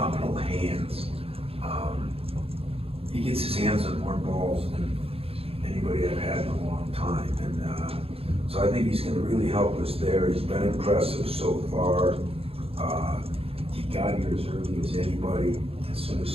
hands. He gets his hands on more balls than anybody I've had in a long time, and so I think he's going to really help us there. He's been impressive so far. He got here as early as anybody. As soon as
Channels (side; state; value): left; late; 0.28 ms